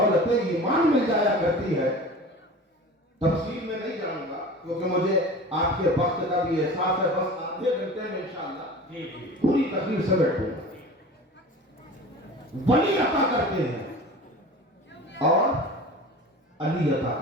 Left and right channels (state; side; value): normal; both; correlation 0.37